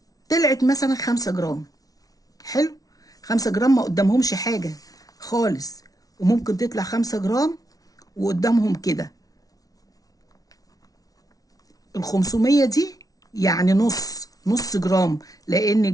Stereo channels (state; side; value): late; right; 0.18 ms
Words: طلعت مثلا 5 جرام. حلو، 5 جرام ما قدامهمش حاجة خالص، وممكن تطلع 5 جرام وقدامهم كده 500 دي، يعني نص جرام. لأن